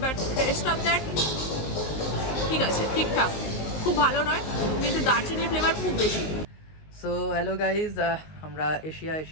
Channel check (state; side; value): late; right; 19 ms